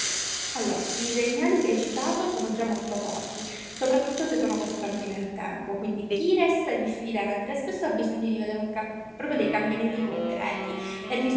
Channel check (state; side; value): identical; both; correlation 1.00